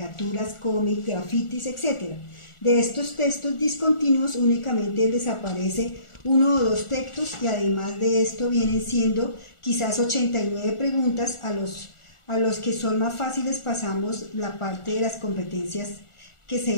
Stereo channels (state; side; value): late; right; 1.4 ms